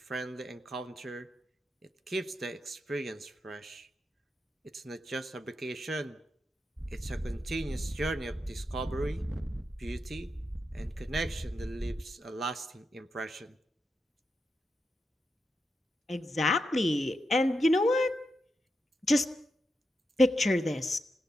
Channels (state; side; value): normal; both; correlation 0.86